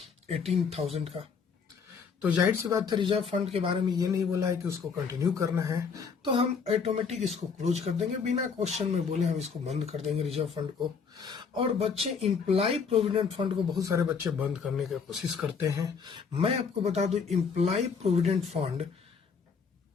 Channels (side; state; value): right; quieter; 5.8 dB